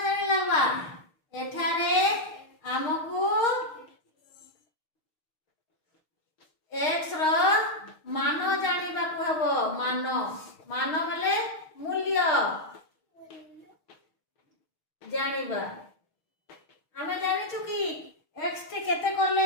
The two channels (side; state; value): right; late; 6.4 ms